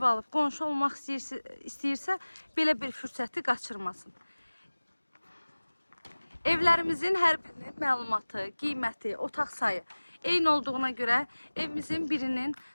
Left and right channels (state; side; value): inverted; both; correlation -1.00